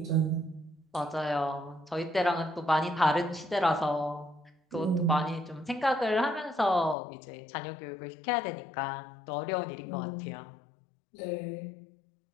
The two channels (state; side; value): drops out; right; at 7.0 s